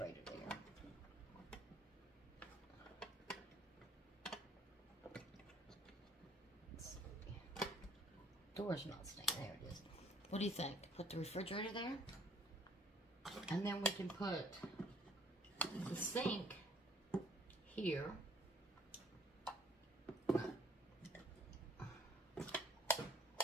there? Let's see. Door's not staying. There it is. What do you think? Put the refrigerator there? And then we can put the sink here.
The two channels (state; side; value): normal; both; correlation 0.58